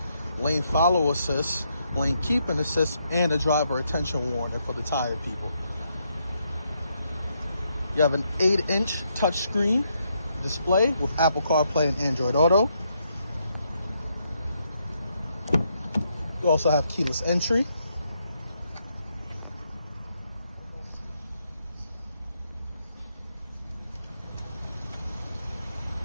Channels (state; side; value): inverted; both; correlation -0.77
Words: lane follow assist, lane keeping assist, and a driver attention warning for the tired people. You have an 8-inch touchscreen display with Apple CarPlay and Android Auto. You also have keyless entry.